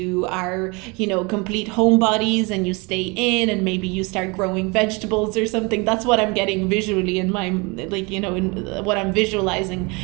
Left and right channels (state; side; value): quieter; left; 28.1 dB